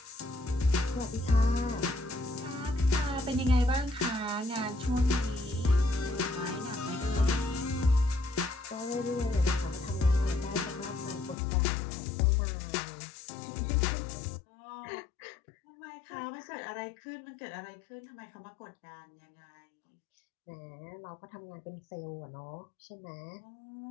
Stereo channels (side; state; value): right; drops out; at 11.4 s